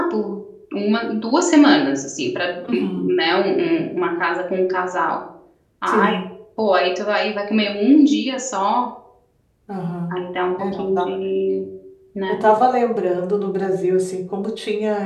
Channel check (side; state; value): both; identical; correlation 1.00